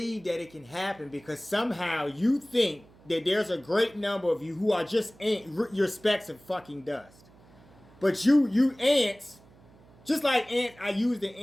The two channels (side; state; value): right; noise; hum, 26 dB below the sound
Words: that it can happen because somehow you think that there's a great number of you who are just your specks of fucking dust. But you ants, just like ant, I used the